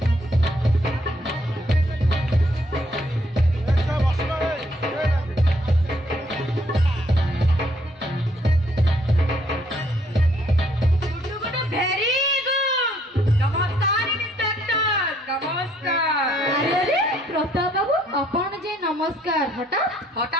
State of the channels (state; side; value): normal; both; correlation 0.67